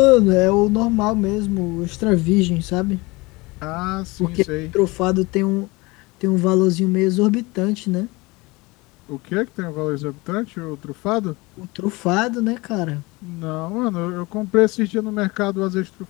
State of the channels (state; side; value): quieter; right; 23.7 dB